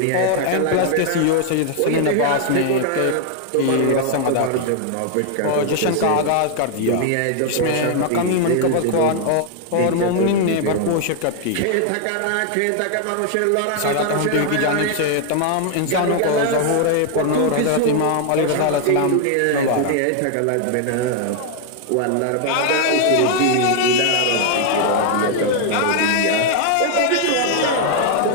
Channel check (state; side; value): different; both; correlation 0.00